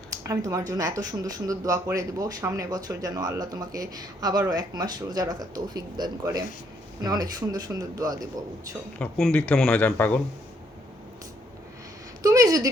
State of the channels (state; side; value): normal; both; correlation 0.70